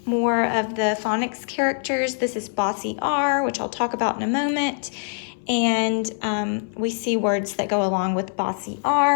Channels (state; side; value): silent; right; 61 dB below the other